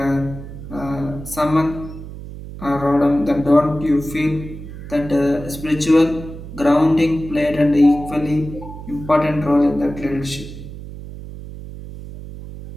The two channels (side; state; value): right; noise; hum, 12 dB below the sound